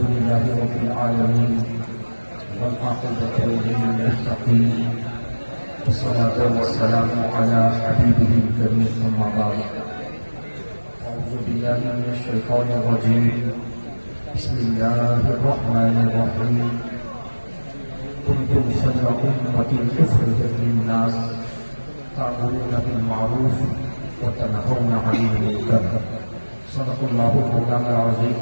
رب العالمين والعاقبة للمتقين والصلاة والسلام على حبيبه الكريم أما بعد أعوذ بالله من الشيطان الرجيم بسم الله الرحمن الرحيم كنتم خير أمة أخرجت للناس تأمرون بالمعروف وتنهون عن المنكر صدق الله مولانا العظيم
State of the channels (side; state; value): both; inverted; correlation -1.00